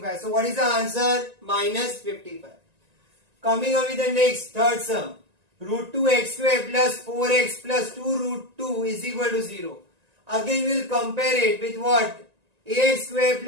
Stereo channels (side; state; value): left; late; 1.9 ms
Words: So what is the answer? Minus 55. Coming on with the next, third sum. Root 2x square plus 4x plus 2 root 2 is equal to 0. Again we will compare it with what? Ax square